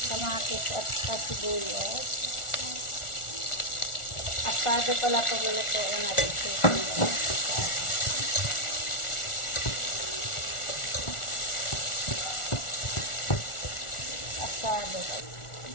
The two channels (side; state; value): right; late; 1.4 ms